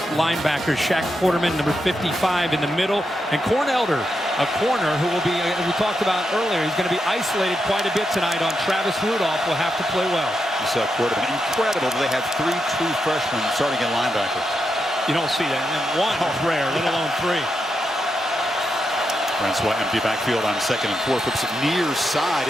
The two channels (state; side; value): normal; both; correlation 0.85